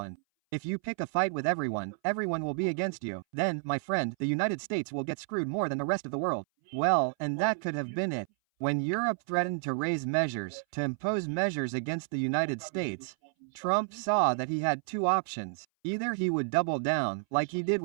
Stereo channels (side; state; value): left; silent; 57 dB below the other